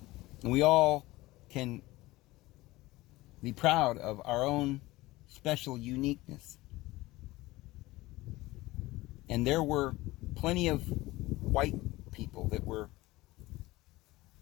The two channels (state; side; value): quieter; right; 19.2 dB